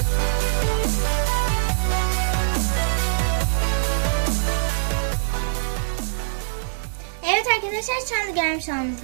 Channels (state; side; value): silent; left; 63 dB below the other